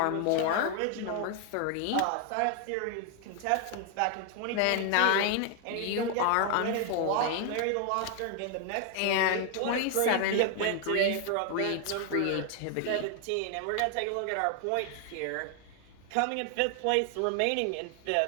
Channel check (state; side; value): different; both; correlation 0.00